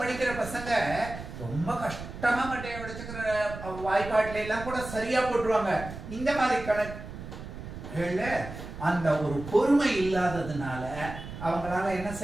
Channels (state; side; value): noise; right; rumble, 11 dB below the sound